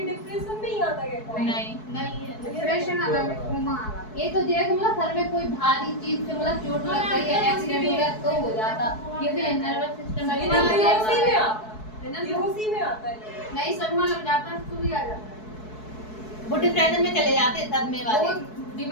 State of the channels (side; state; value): right; late; 4.7 ms